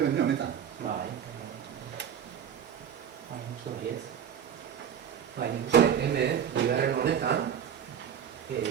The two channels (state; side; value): quieter; left; 8.7 dB